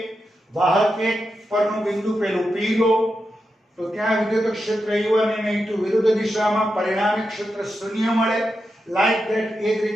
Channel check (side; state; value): both; normal; correlation 0.88